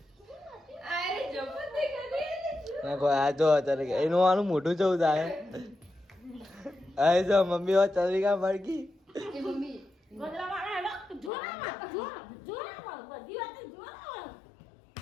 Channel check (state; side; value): drops out; right; at 11.3 s